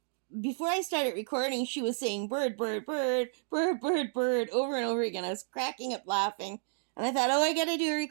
Before I started recording, she was saying bird, bird, bird, bird, bird, bird over and over again. I was cracking up laughing. And I thought, oh, I gotta do a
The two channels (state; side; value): silent; left; digital silence